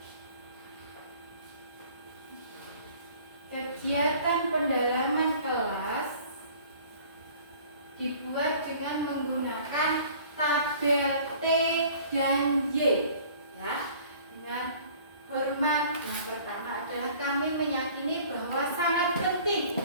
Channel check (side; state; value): both; inverted; correlation -0.51